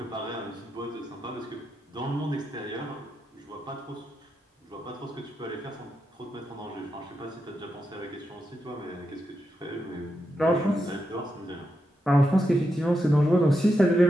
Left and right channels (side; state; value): both; normal; correlation 0.85